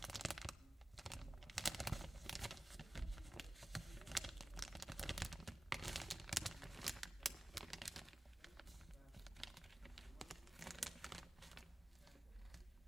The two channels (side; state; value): both; normal; correlation 0.97